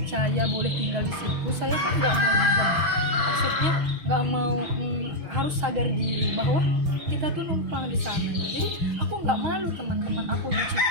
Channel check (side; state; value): left; late; 6.2 ms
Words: boleh tinggal di situ, saya kan nggak mau diam, maksudnya nggak mau harus sadar diri bahwa kita tuh numpang di sana. Jadi aku nggak malu teman-teman, aku nyuci